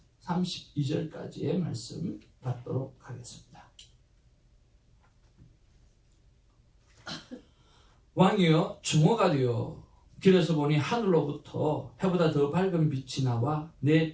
32절까지의 말씀 받도록 하겠습니다. 왕이여 주모가 되어 길에서 보니 하늘로부터 해보다 더 밝은 빛이 나와 내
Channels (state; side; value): identical; both; correlation 1.00